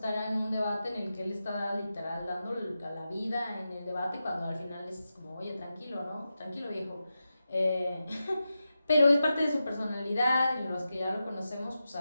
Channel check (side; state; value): both; inverted; correlation -0.91